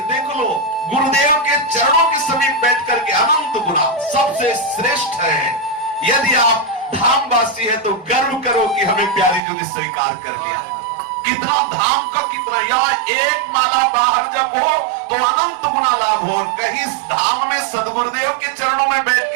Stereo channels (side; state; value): left; drops out; at 9.4 s